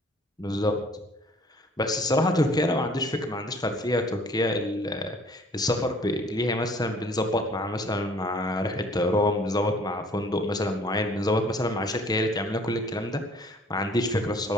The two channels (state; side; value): normal; both; correlation 0.55